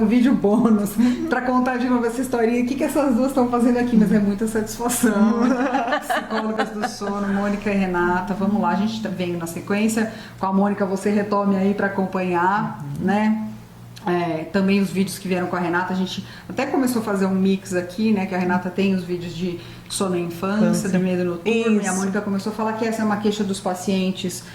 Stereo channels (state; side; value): identical; both; correlation 1.00